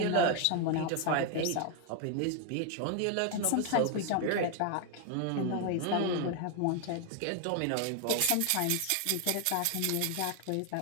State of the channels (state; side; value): different; both; correlation 0.00